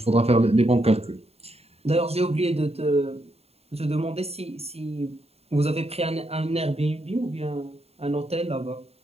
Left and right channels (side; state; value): left; late; 0.30 ms